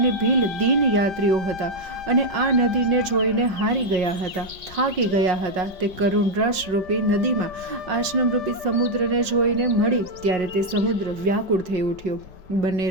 ભીલ દીન યાત્રીઓ હતા અને આ નદીને જોઈને હારી ગયા હતા, થાકી ગયા હતા. તે કરુણ રસરૂપી નદીમાં આશ્રમરૂપી સમુદ્રને જોઈને મળી ત્યારે તે સમુદ્ર વ્યાકુળ થઈ ઉઠ્યો. બંને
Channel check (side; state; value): left; late; 5.5 ms